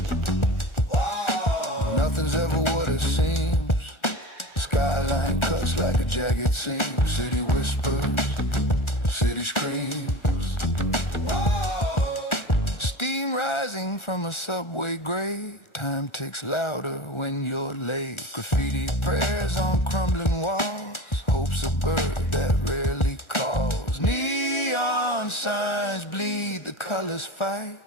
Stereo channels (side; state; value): right; late; 1.4 ms